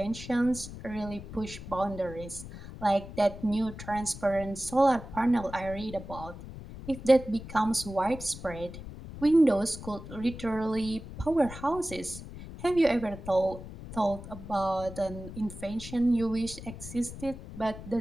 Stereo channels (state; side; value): noise; left; rumble, 12 dB below the sound